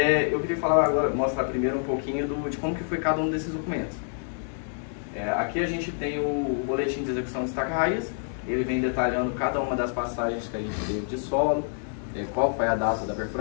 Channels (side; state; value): right; silent; digital silence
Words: eu queria falar agora, mostrar primeiro um pouquinho de como que foi cada um desses documentos. Aqui a gente tem o boletim de execução de estaca raiz. Ele vem detalhando cada uma das passagens que a gente teve de solo, qual foi a data da